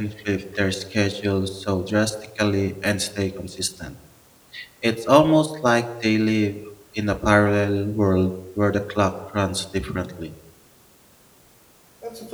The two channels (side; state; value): both; identical; correlation 1.00